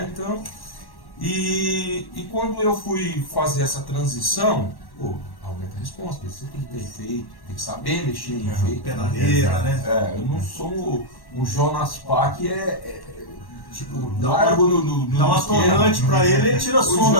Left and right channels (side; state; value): right; late; 1.1 ms